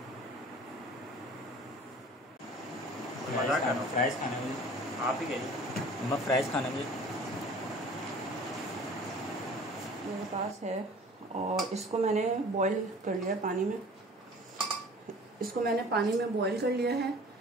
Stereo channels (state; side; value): normal; both; correlation 0.46